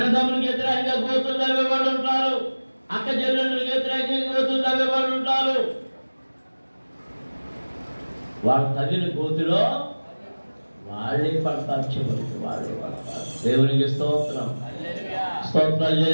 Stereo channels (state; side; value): inverted; both; correlation -1.00